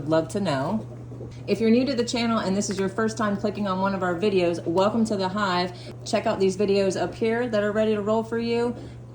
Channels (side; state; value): both; identical; correlation 1.00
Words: love to know. If you're new to the channel and this is your first time clicking on one of our videos, welcome to the Hive. Check out these videos up here that are ready to roll for you,